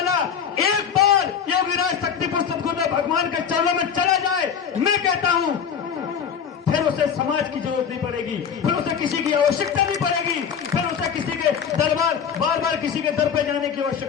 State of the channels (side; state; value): right; quieter; 7.4 dB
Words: एक बार योगीराज शक्तिपुर सदगुरुदेव भगवान के चरणों में चला जाए, मैं कहता हूं फिर उसे समाज की जरूरत नहीं पड़ेगी, फिर उसे किसी की आवश्यकता नहीं पड़ेगी, फिर उसे किसी के दरबार बार बार किसी के दर पे जाने की